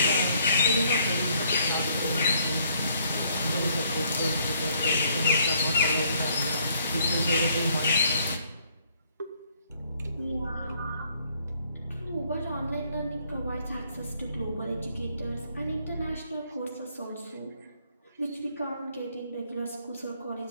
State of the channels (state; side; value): inverted; both; correlation -0.66